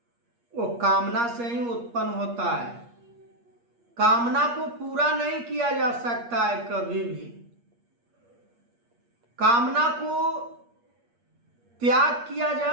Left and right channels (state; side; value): late; left; 8.5 ms